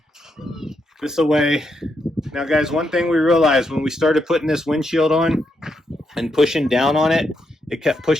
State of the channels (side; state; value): both; normal; correlation 0.81